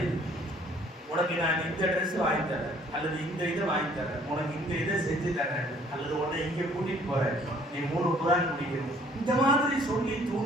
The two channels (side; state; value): both; normal; correlation 0.59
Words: இது. உனக்கு நான் இந்த ட்ரெஸ் வாங்கி தரேன், அல்லது இந்த இதை வாங்கி தரேன், உனக்கு இந்த இதை செஞ்சு தரேன், அல்லது உன்னை இங்கே கூட்டிட்டு போறேன், நீ 3 குர்ஆன் முடிக்கணும், இந்த மாதிரி சொல்லி